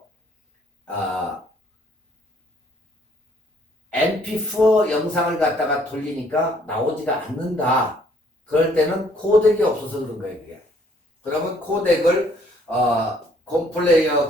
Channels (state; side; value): normal; both; correlation 0.63